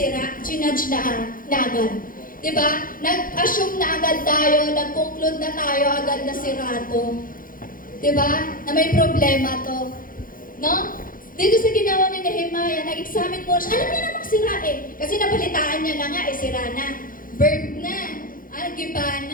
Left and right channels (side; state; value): right; late; 0.40 ms